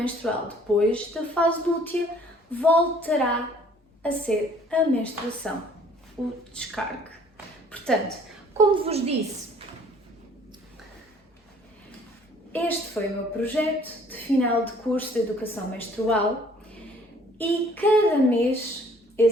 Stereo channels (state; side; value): normal; both; correlation 0.57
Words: Depois da fase lútea, voltará a ser a menstruação, o descargue. Portanto, como vos disse, este foi o meu projeto de final de curso de educação menstrual e cada mês